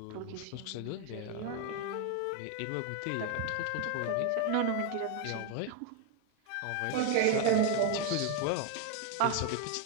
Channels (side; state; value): both; different; correlation 0.01